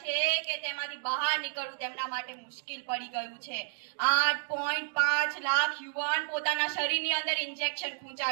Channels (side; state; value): left; silent; digital silence